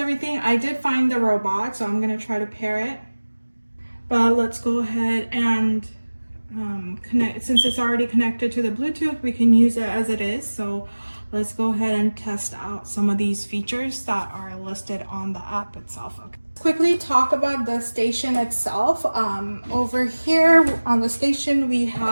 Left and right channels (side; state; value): both; inverted; correlation -1.00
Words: I did find the robot, so I'm gonna try to pair it. But let's go ahead and connect. Since it's already connected to the Bluetooth, we can use it as it is. So let's go ahead and test out some of these features that are listed on the app itself. Okay. Let's quickly talk about the station itself. Over here on the station, we